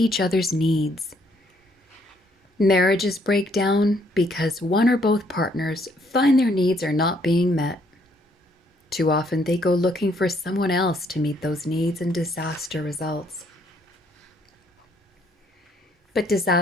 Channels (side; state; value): both; normal; correlation 0.68